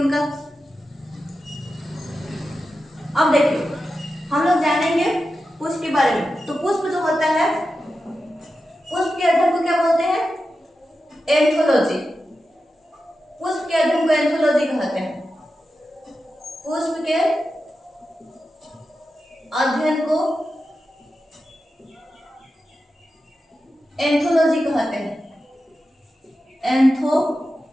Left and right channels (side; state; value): both; normal; correlation 0.91